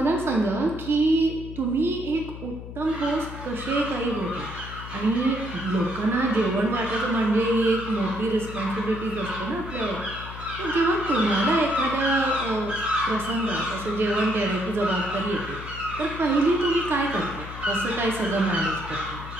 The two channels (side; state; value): left; noise; hum, 11 dB below the sound